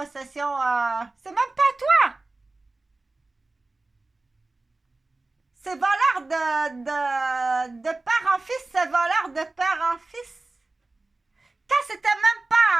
C'est même pas toi! C'est voleur de père en fils, c'est voleur de père en fils. Quand c'était même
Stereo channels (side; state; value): left; quieter; 3.2 dB